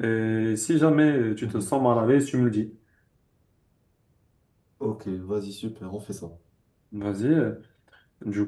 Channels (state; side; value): identical; both; correlation 1.00